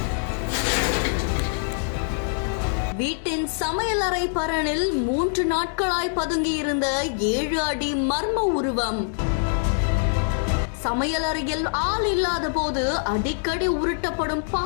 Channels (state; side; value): silent; right; digital silence